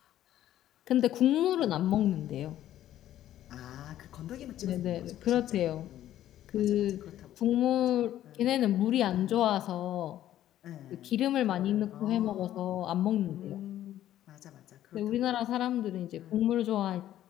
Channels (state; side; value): quieter; right; 12.5 dB